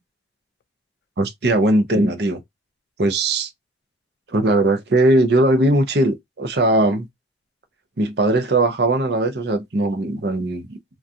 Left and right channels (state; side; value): normal; both; correlation 0.48